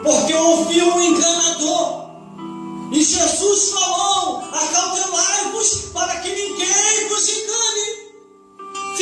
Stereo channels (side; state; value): both; identical; correlation 1.00